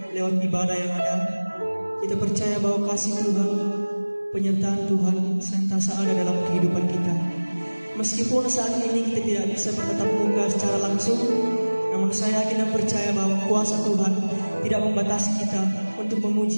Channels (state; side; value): inverted; both; correlation -1.00